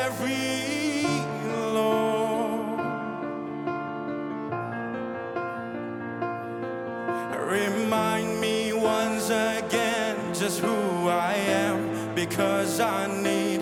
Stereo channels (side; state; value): both; identical; correlation 1.00